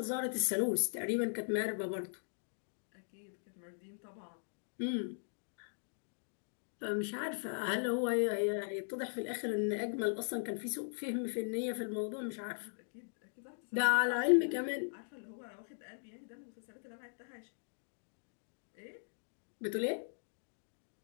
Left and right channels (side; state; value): right; silent; digital silence